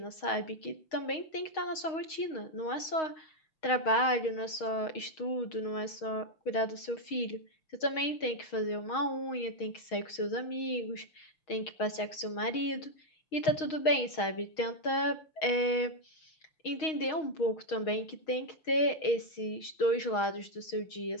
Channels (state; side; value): late; right; 6.3 ms